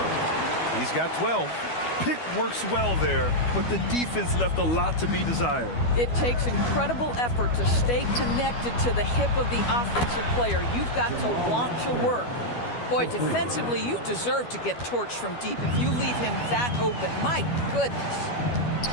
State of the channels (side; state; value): right; late; 12 ms